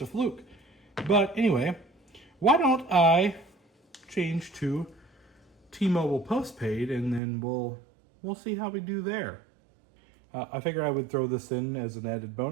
a fluke. But anyway, why don't I change to T-Mobile postpaid, and then we'll see how we do there. I figured I would throw this in as an added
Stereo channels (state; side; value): drops out; left; at 7.2 s